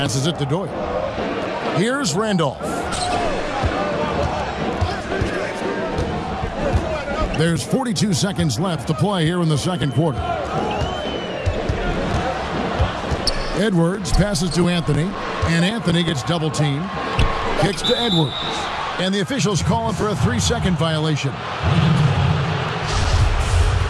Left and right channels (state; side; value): identical; both; correlation 1.00